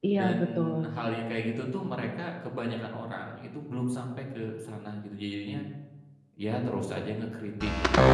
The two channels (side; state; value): both; identical; correlation 1.00